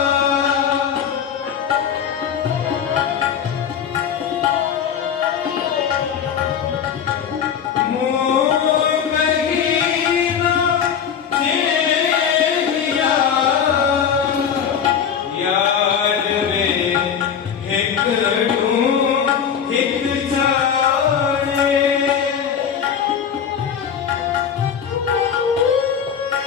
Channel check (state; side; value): quieter; right; 7.9 dB